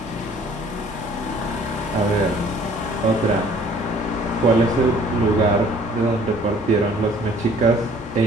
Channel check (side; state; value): both; normal; correlation 0.55